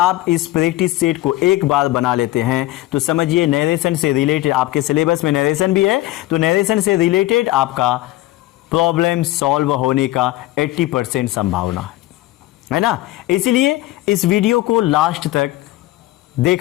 इस प्रैक्टिस सेट को एक बार बना लेते हैं तो समझिए नरेशन से रिलेटेड, आपके सिलेबस में नरेशन भी है तो नरेशन से रिलेटेड आपका प्रॉब्लम सॉल्व होने का 80% संभावना है ना। इसलिए इस वीडियो को लास्ट तक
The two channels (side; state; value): right; quieter; 16.9 dB